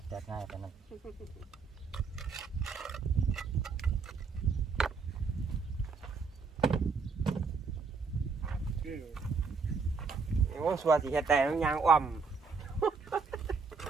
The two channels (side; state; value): left; quieter; 4.9 dB